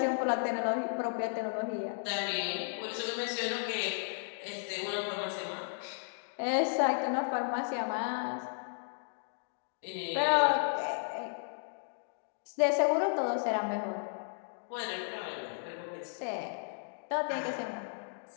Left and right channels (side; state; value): right; silent; digital silence